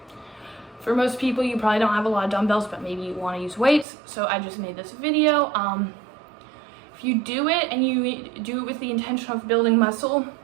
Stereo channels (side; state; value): left; drops out; at 3.9 s